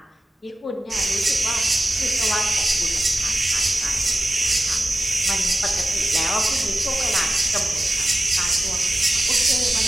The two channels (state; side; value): normal; both; correlation 0.94